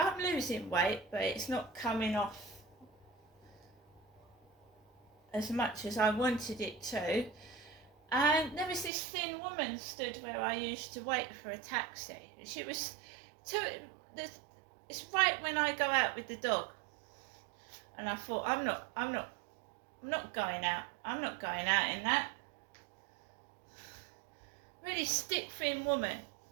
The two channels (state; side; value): drops out; left; at 8.9 s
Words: losing weight, but it's not coming off as much as I wanted it to. And there was this thin woman stood where I used to wait for a taxi. She was it's right when I go out with the dog. And I thought, I'm not going out. I'm not going out in that. Really stick thin woman